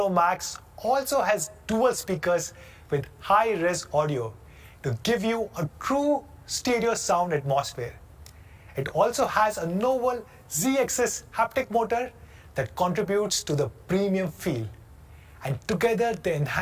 Max also has dual speakers with high-res audio to give you a true stereo sound atmosphere. It also has a novel Z-axis haptic motor that contributes to the premium feel. And together they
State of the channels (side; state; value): both; identical; correlation 1.00